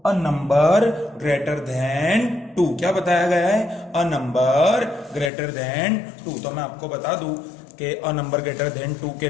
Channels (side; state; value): right; drops out; at 5.3 s